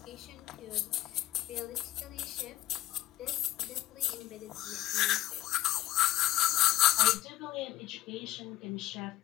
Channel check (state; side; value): quieter; right; 14.9 dB